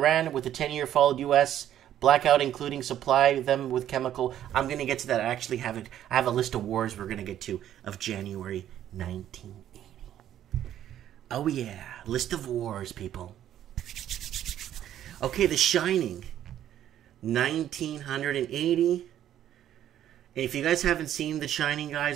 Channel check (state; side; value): quieter; left; 11.3 dB